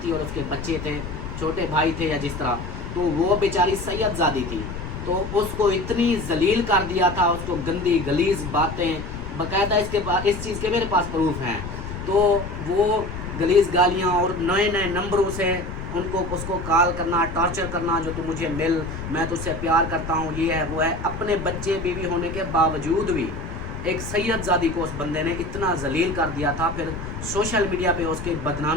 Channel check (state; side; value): noise; left; rumble, 8 dB below the sound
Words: थी और उसके बच्चे थे, छोटे भाई थे या जिस तरह। तो वो बेचारी सैयदजादी थी, तो उसको इतनी जलील कर दिया था, उसको गंदी गलीज बातें, बाकायदा इस चीज़ के मेरे पास प्रूफ हैं। तो वो गलीज गालियाँ और नए नए नंबरों से उसको कॉल करना, टॉर्चर करना, जो तू मुझे मिल, मैं तुझसे प्यार करता हूँ, ये है वो है। अपने बच्चे बीवी होने के बावजूद भी एक सैयदजादी को उस बंदे ने इतना जलील कर दिया था। फिर सोशल मीडिया पे उसकी